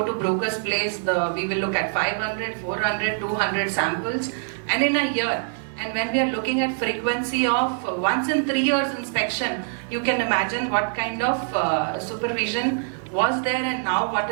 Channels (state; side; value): silent; left; 62 dB below the other